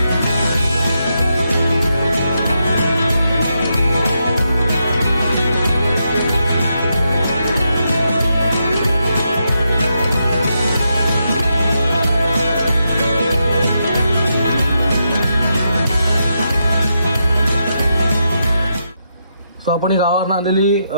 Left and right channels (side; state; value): both; inverted; correlation -0.83